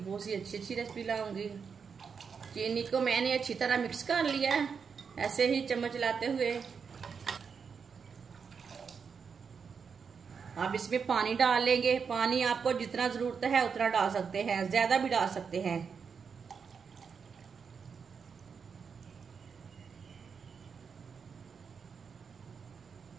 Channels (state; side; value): quieter; left; 6.1 dB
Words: सी अच्छी अच्छी रेसिपी लाऊंगी। चीनी को मैंने अच्छी तरह मिक्स कर लिया है, ऐसे ही चम्मच लाते हुए। अब इसमें पानी डाल लेंगे। पानी आपको जितना ज़रूरत है उतना डाल सकते हैं, ज़्यादा भी डाल सकते हैं।